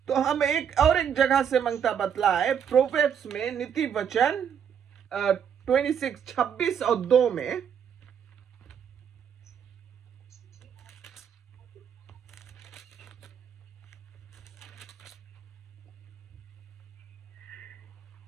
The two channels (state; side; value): quieter; left; 8.0 dB